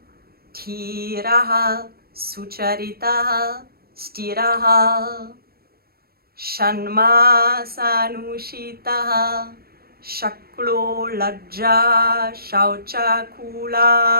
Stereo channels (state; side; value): late; left; 0.44 ms